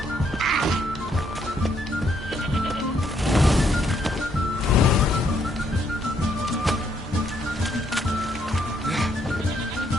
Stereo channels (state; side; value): normal; both; correlation 0.72